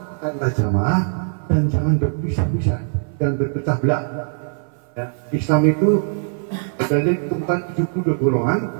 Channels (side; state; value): left; silent; 58 dB below the other